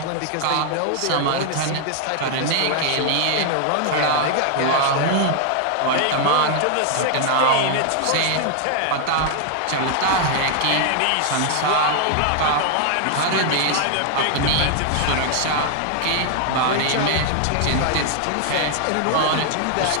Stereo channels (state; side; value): different; both; correlation 0.00